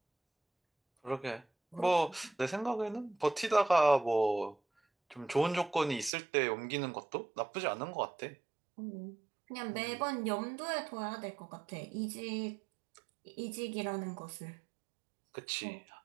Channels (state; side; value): drops out; left; at 6.1 s